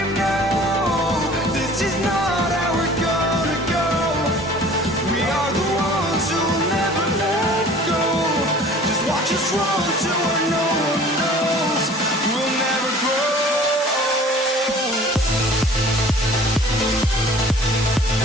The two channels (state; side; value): normal; both; correlation 0.48